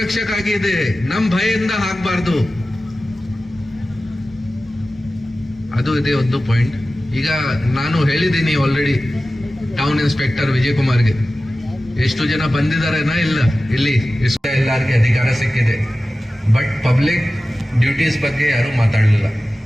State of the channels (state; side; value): normal; both; correlation 0.95